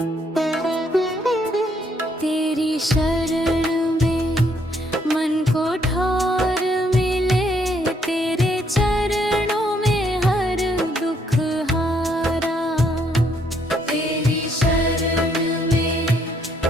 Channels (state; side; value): normal; both; correlation 0.70